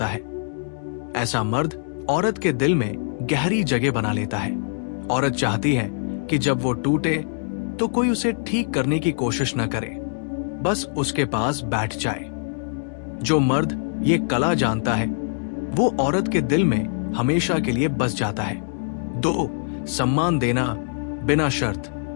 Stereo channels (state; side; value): silent; right; digital silence